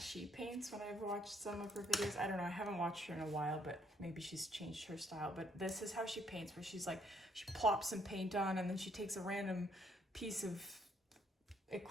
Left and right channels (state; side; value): normal; both; correlation 0.68